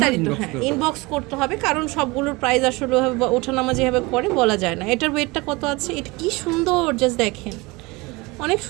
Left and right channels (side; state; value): left; quieter; 24.0 dB